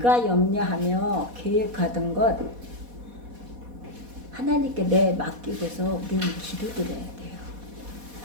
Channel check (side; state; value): left; late; 4.1 ms